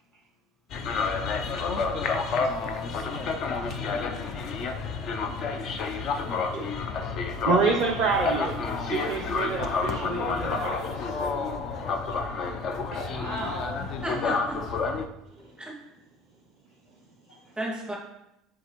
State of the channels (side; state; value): both; normal; correlation 0.46